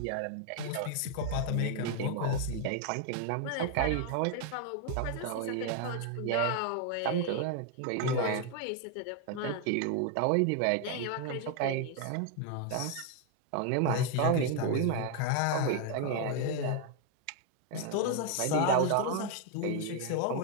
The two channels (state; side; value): different; both; correlation 0.00